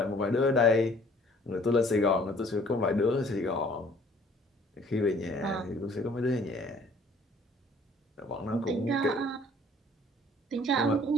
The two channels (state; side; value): normal; both; correlation 0.56